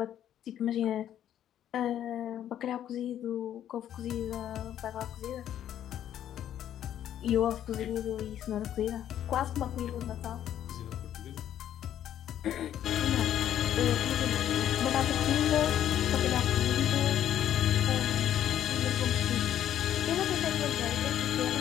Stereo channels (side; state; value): right; quieter; 10.9 dB